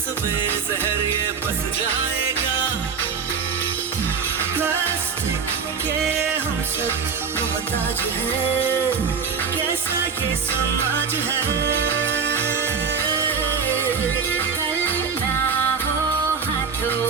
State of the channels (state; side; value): quieter; left; 5.9 dB